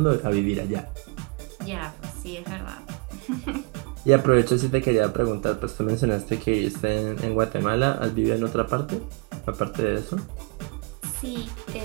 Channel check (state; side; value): quieter; left; 31.4 dB